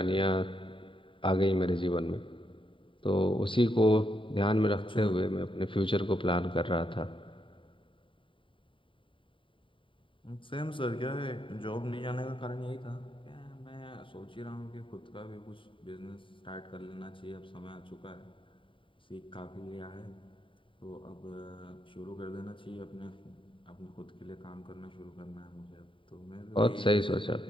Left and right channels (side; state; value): right; late; 0.25 ms